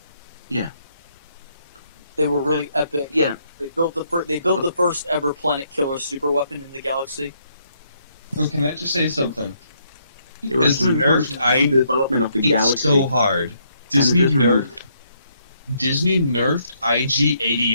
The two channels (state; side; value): inverted; both; correlation -0.73